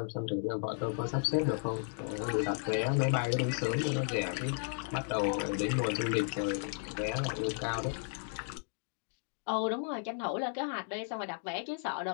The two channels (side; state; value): right; silent; 55 dB below the other